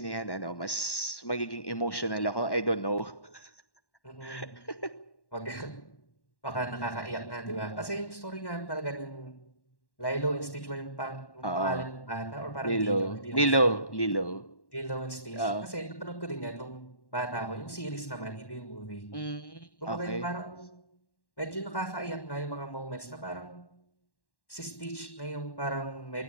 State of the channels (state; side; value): late; right; 1.1 ms